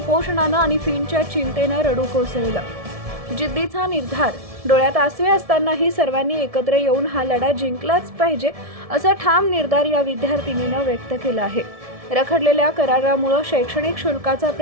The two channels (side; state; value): left; late; 1.7 ms